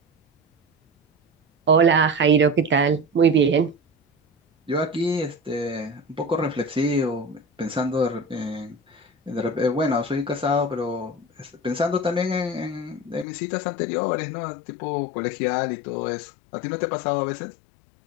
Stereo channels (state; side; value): drops out; right; at 13.2 s